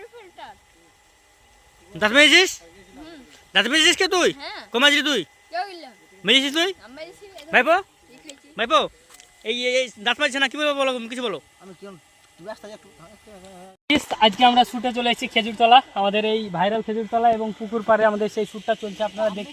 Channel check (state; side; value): identical; both; correlation 1.00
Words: রিফিলটা দাঁত মেরেছিস? দাঁত মেরেছিস কে তুই? হ্যাঁ। কমাছিস তুই? কেউ গেলাম মেরেছিস তুই? আমরা এসে ভাইপো খাইছি ভাইপো এই দাঁত মারছে না, কি বলবো বলো, কিছু বলো। আমি কি তুই আসতে যা আজকে আমরা শুটে চলে এসেছি খেজুরতলা, আমাদের এই ভাইরাল খেজুরতলা এবং পুকুর পাড়ে আমাদের সেই শ্যুটটা চলছে। আপনারা